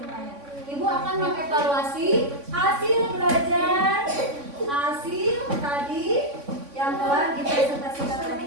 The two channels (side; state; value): left; late; 3.6 ms